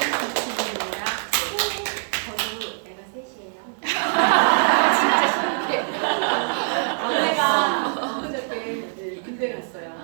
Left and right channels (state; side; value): silent; left; digital silence